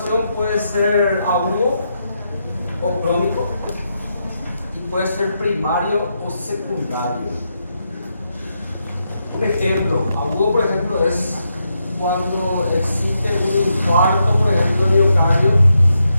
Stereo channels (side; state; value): both; inverted; correlation -0.83